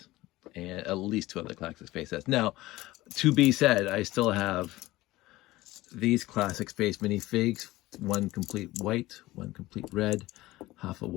and at least 2 other classic space sets. Now, to be said, I still have these classic space minifigs, 1 complete white, 1 complete red, half a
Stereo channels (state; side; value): quieter; right; 18.1 dB